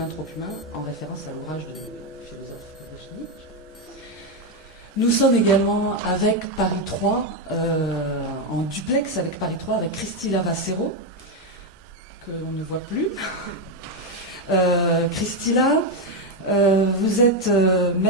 trop humain, en référence à l'ouvrage du philosophe Virginie. Nous sommes également avec Paris 3, en duplex avec Paris 3, avec Christila Vassero, que l'on ne voit plus. Christila, vous êtes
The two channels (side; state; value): both; normal; correlation 0.06